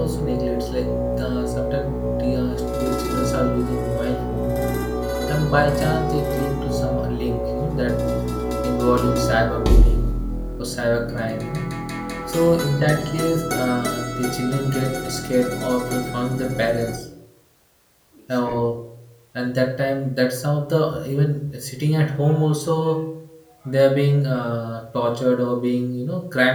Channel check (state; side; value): identical; both; correlation 1.00